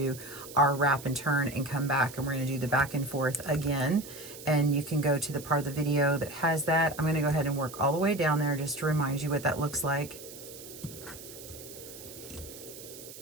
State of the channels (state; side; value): noise; right; hiss, 15 dB below the sound